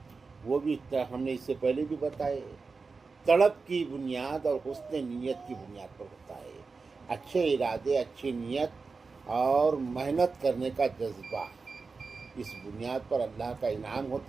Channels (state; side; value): quieter; left; 4.4 dB